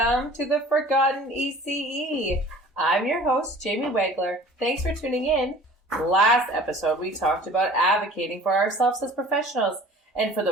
to the Forgotten ECE. I'm your host, Jamie Wegler. Thanks for tuning in. Last episode, we talked about advocating for ourselves as professionals and for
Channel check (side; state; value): both; normal; correlation 0.47